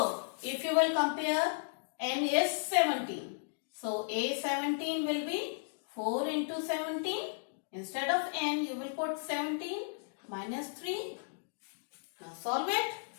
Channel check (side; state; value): right; silent; digital silence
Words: if you will compare, n is 17. So, a17 will be 4 into 17. Instead of n, you will put 17 minus 3. Now, solve it.